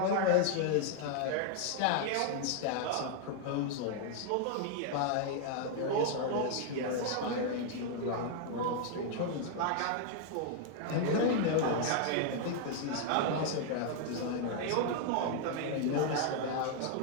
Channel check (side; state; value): both; different; correlation 0.00